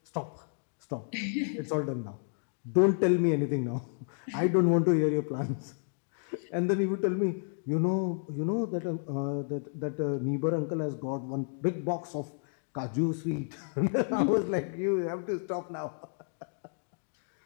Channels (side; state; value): right; silent; digital silence